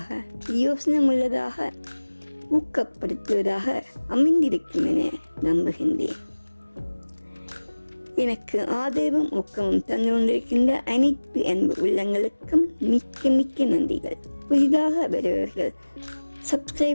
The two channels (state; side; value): inverted; both; correlation -1.00